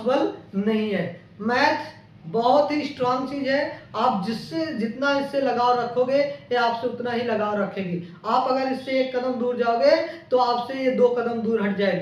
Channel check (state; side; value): identical; both; correlation 1.00